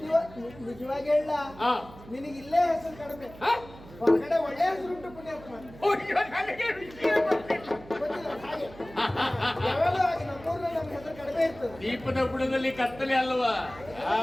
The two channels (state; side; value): noise; right; hum, 18 dB below the sound